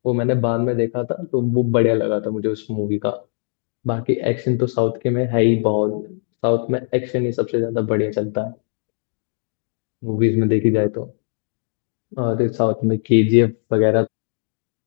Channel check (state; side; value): silent; right; digital silence